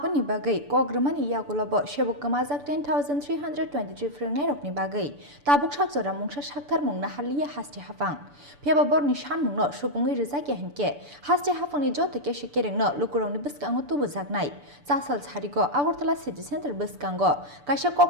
Bagai Kogromani Yagolobo Shebuk Kamazak 10,323 Frengnerokni Bagai Tabuk Shakzora Mungsha Shaktar Mung Nahalia Hasti Haphang Peba Borni Sanmungno Supungwi Rwjakya Honkhe Hasti Haphangni Jotto Kesekerengno Lukurokni Bwsakngo Tubujaknai Jasal Charigo Agortala City Center Bwsakngo Kaisa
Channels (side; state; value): left; late; 6.9 ms